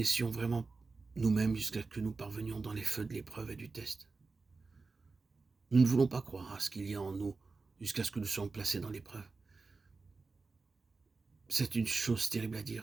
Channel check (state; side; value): quieter; left; 4.0 dB